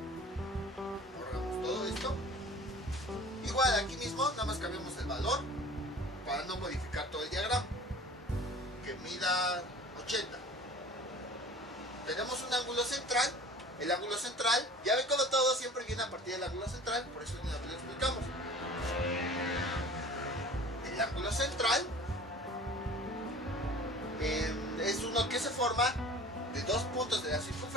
Borramos todo esto. Igual aquí mismo, nada más cambiamos el valor para no modificar todo el diagrama. Que mida 80. Tenemos un ángulo central. El ángulo central, ya ven como todo siempre viene a partir del ángulo central, por eso una vez lo explicamos. El ángulo central es uno que se forma de dos puntos de la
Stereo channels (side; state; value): both; normal; correlation 0.43